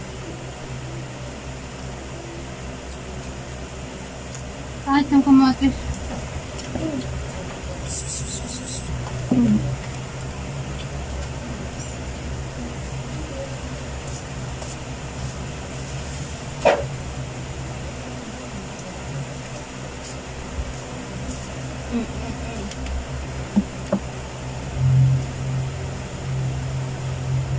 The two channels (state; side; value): identical; both; correlation 1.00